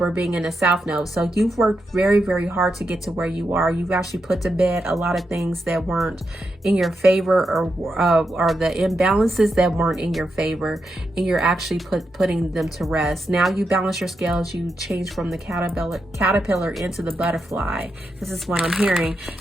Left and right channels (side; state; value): both; normal; correlation 0.85